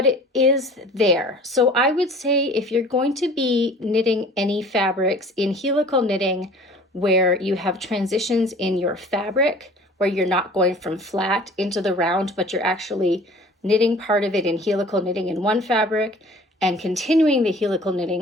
it is there. So I would say if you're going to be knitting any fabrics in helical knitting where you have transitions in your fabric, where you're not going from flat into the round, but you're actually knitting part of it in helical knitting in one fabric and continuing the helical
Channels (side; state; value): both; normal; correlation 0.47